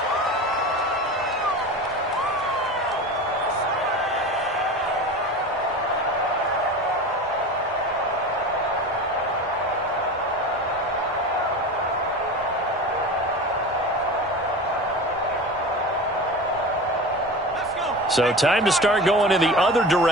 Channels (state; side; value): normal; both; correlation 0.31